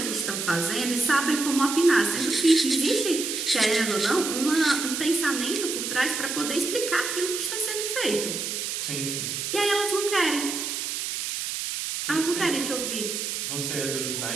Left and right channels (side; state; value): right; noise; hiss, 3 dB below the sound